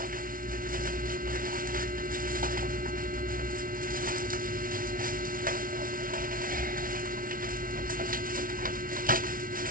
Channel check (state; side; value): late; left; 0.41 ms